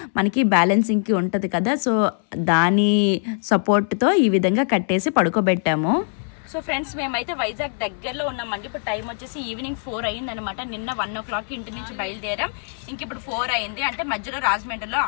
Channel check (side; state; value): right; silent; 64 dB below the other